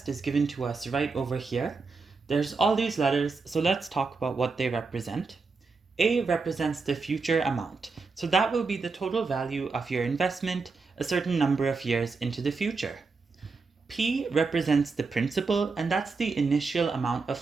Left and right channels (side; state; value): left; quieter; 4.3 dB